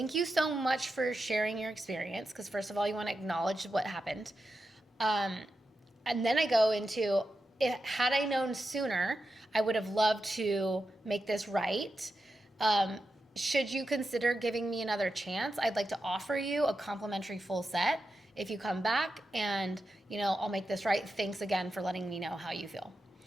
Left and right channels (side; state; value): both; normal; correlation 0.89